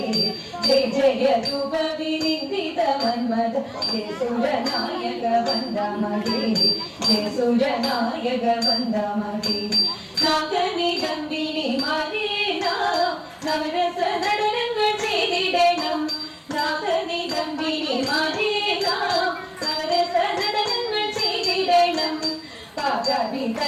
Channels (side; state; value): both; identical; correlation 1.00